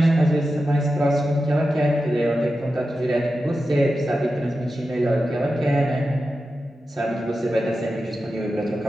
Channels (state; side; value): normal; both; correlation 0.91